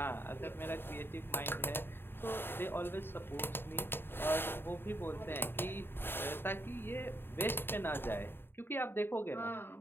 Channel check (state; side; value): late; right; 0.10 ms